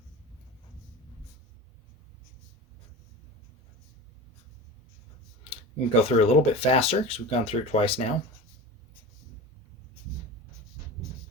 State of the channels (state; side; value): normal; both; correlation 0.31